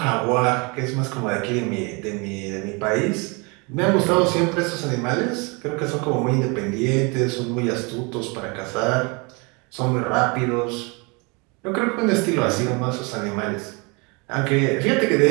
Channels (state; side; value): quieter; left; 29.9 dB